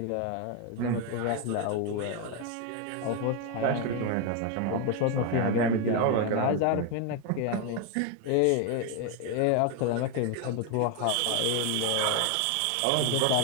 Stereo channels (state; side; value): different; both; correlation 0.01